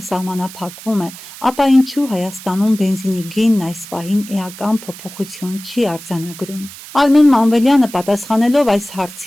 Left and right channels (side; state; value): right; noise; hiss, 15 dB below the sound